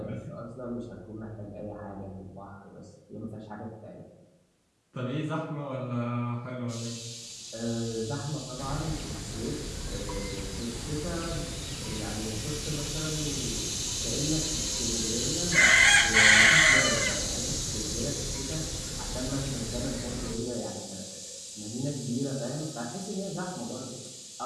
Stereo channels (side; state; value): both; identical; correlation 1.00